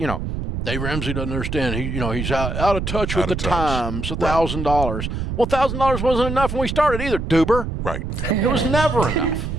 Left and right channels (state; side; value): noise; right; rumble, 4 dB below the sound